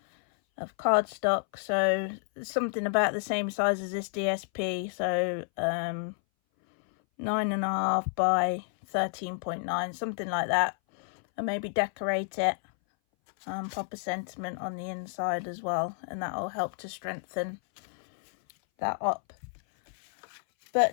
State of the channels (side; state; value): right; silent; 58 dB below the other